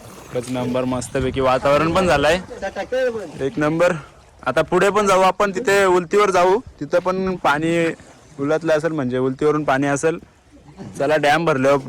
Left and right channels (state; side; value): identical; both; correlation 1.00